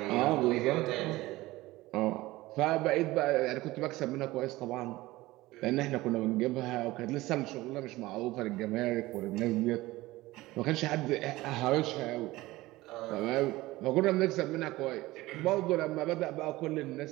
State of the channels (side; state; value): left; quieter; 18.7 dB